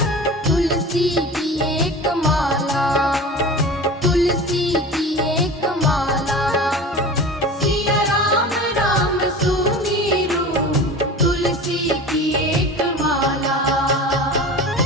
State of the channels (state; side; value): normal; both; correlation 0.35